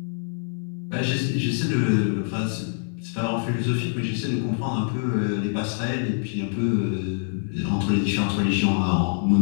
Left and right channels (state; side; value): silent; right; 59 dB below the other